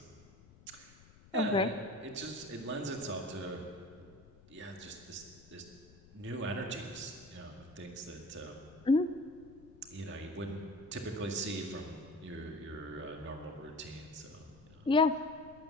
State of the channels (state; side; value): noise; left; rumble, 23 dB below the sound